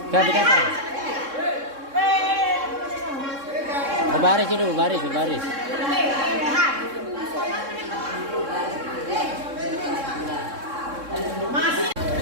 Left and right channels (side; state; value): left; late; 3.7 ms